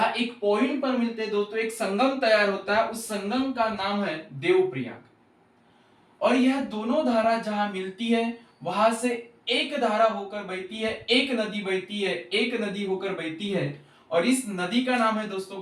एक पॉइंट पर मिलते हैं दोस्तों, एक संगम तैयार होता है। उस संगम का नाम है देवप्रयाग। और यह दोनों धारा जहां मिलती है वहां से एक धारा होकर बहती है, एक नदी बहती है, एक नदी होकर बहती है। और इस नदी का नाम है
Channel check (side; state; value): both; identical; correlation 1.00